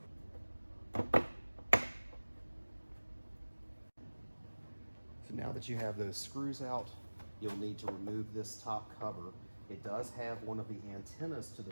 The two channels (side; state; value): both; inverted; correlation -1.00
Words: So now that you have those screws out, you'll need to remove this top cover. It does have one of the antennas to the